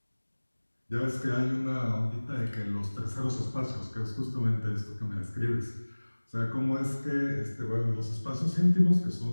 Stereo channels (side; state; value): both; inverted; correlation -1.00